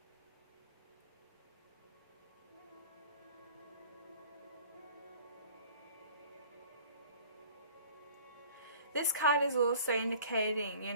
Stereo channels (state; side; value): inverted; both; correlation -0.49